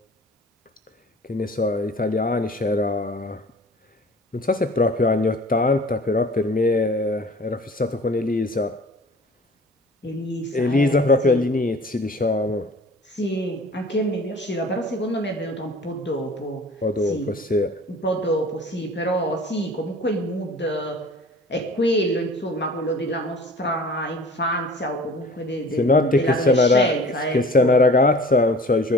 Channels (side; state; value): both; normal; correlation 0.46